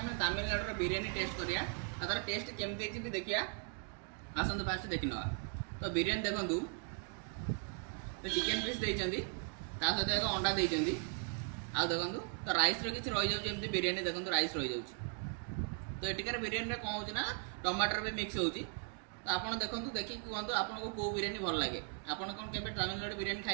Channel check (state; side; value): quieter; left; 38.9 dB